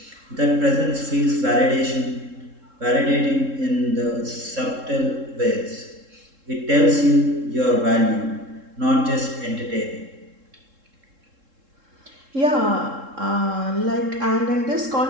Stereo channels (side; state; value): left; late; 3.7 ms